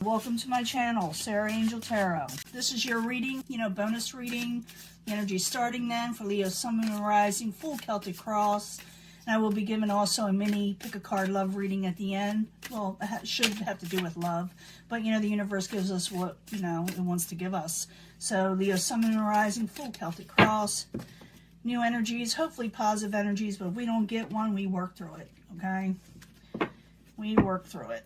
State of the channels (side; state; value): both; identical; correlation 1.00